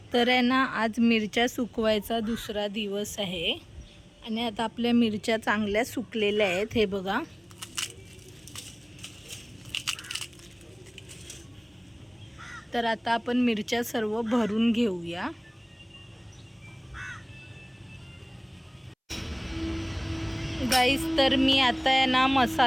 तर आहे ना आज मिरच्या सुकवायचा दुसरा दिवस आहे आणि आता आपल्या मिरच्या चांगल्या सुकलेल्या आहेत. हे बघा, तर आता आपण मिरच्या सर्व भरून घेऊया. गाईस, तर मी आता आहे ना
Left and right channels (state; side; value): identical; both; correlation 1.00